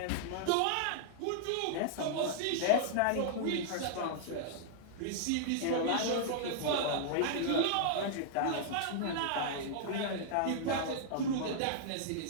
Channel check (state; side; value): different; both; correlation -0.01